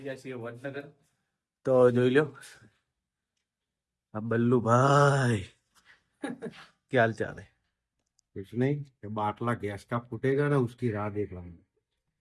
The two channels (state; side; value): identical; both; correlation 1.00